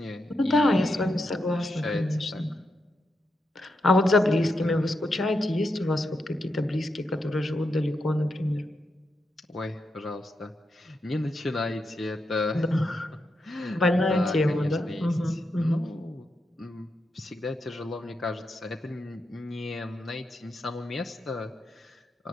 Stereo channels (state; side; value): normal; both; correlation 0.84